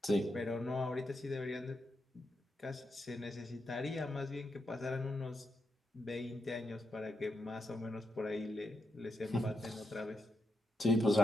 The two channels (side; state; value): both; normal; correlation 0.84